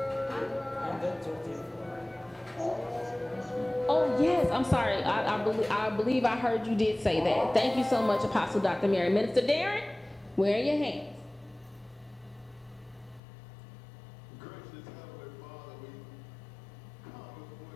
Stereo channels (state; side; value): drops out; right; at 13.2 s